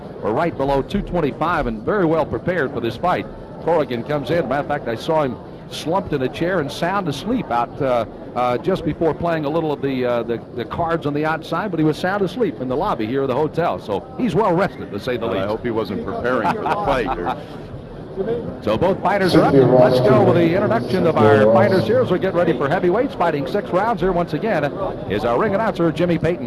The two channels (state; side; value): identical; both; correlation 1.00